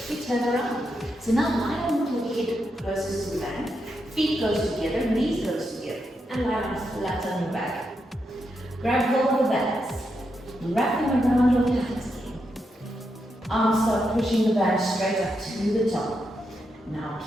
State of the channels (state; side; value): normal; both; correlation 0.84